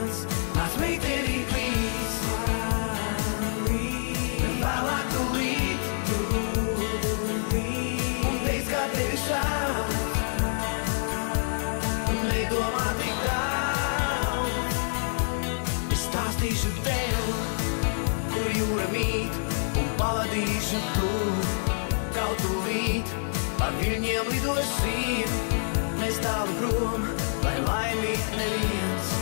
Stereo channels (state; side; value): silent; right; digital silence